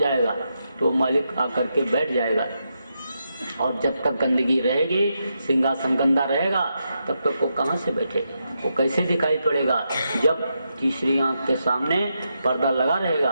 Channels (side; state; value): both; inverted; correlation -0.84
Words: तो मालिक आकर के बैठ जाएगा। और जब तक गंदगी रहेगी, सिंहासन गंदा रहेगा, तब तक वो कहाँ से बैठेगा। वो कैसे दिखाई पड़ेगा? जब तीसरी आंख के सामने पर्दा लगा